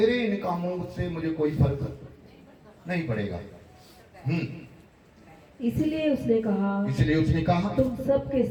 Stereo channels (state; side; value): identical; both; correlation 1.00